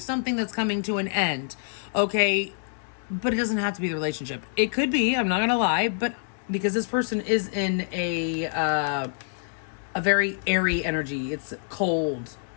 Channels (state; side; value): silent; right; digital silence